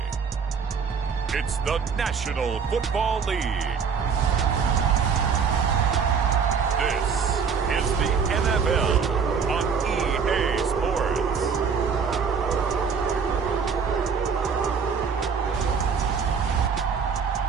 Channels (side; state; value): left; quieter; 6.1 dB